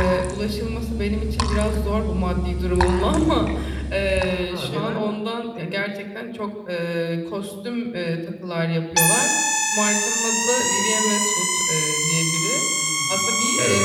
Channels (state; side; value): identical; both; correlation 1.00